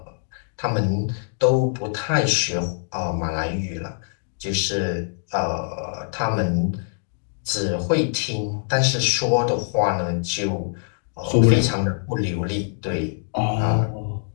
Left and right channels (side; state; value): right; silent; digital silence